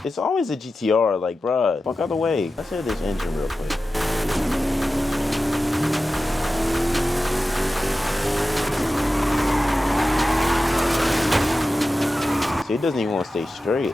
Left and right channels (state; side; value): normal; both; correlation 0.93